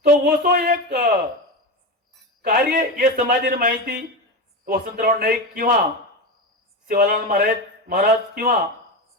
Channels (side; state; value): both; normal; correlation 0.19